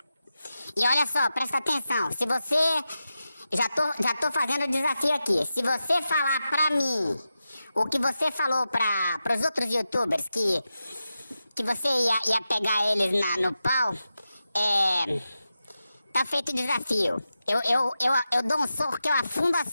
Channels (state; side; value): inverted; both; correlation -0.91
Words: E olha só, presta atenção. Se você... Já tô fazendo o desafio aqui. Se você falar pra mim o que você falou pros outros youtubers, que você ia pegar eles no pau, tá feito o desafio. Eu dou um soco que eu afundo a